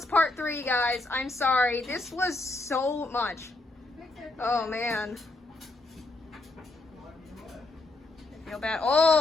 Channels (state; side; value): quieter; right; 3.0 dB